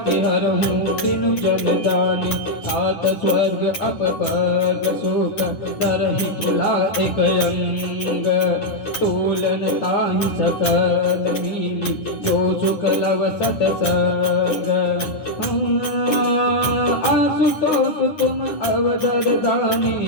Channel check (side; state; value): right; late; 10 ms